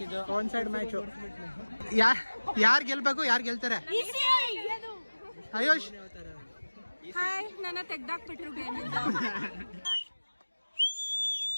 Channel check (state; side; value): inverted; both; correlation -1.00